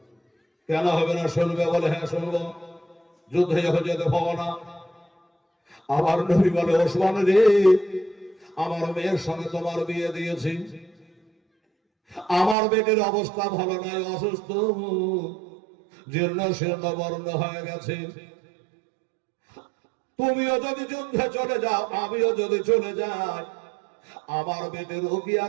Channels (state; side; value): drops out; left; at 12.6 s